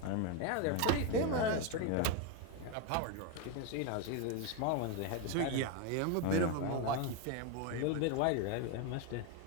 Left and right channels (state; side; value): different; both; correlation 0.01